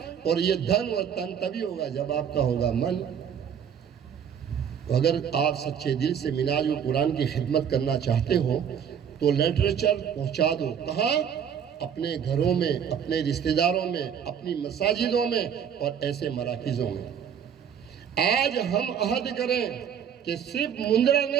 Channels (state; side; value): quieter; left; 8.2 dB